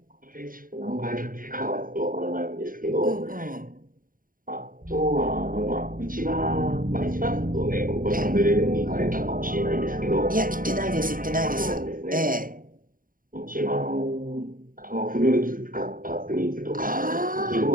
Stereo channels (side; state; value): left; late; 0.40 ms